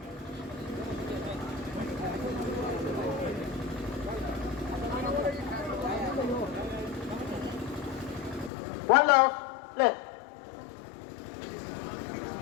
One love. Play.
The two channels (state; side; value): drops out; right; at 8.5 s